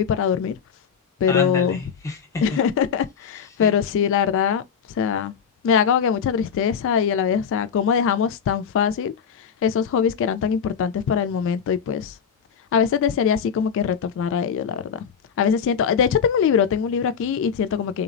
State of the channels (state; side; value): quieter; right; 7.1 dB